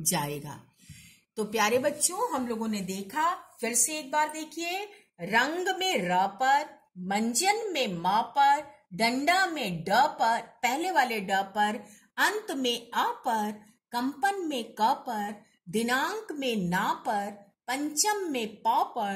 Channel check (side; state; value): both; identical; correlation 1.00